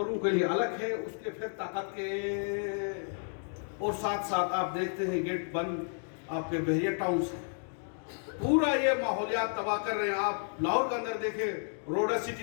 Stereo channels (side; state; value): right; silent; 56 dB below the other